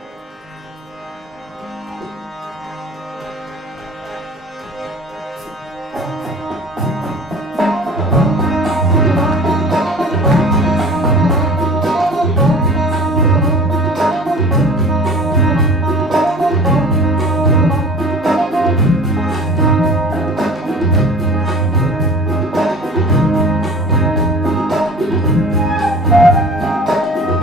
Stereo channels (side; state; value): both; normal; correlation 0.43